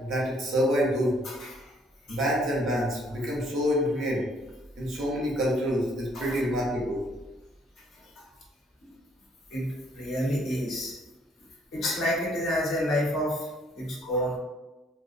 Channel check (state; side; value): normal; both; correlation 0.65